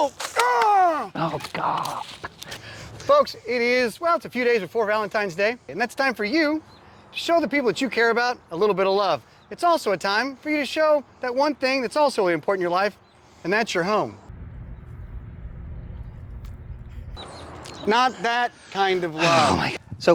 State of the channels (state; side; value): identical; both; correlation 1.00